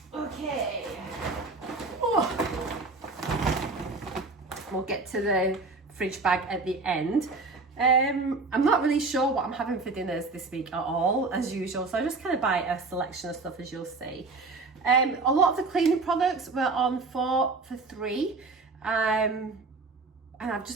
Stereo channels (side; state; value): left; quieter; 3.8 dB